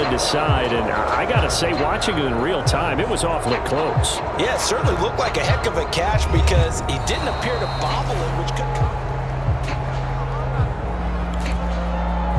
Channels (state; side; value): identical; both; correlation 1.00